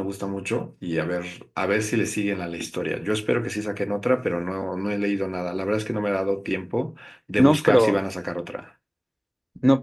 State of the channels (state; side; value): identical; both; correlation 1.00